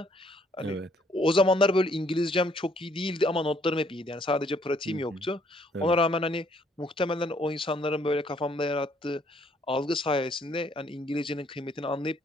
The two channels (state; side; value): normal; both; correlation 0.66